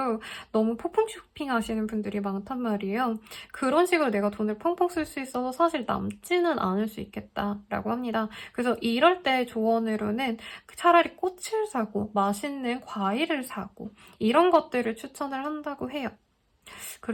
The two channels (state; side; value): identical; both; correlation 1.00